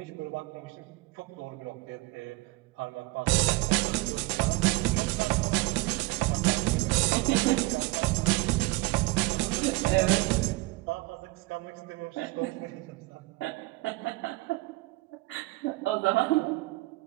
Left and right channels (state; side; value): quieter; left; 21.7 dB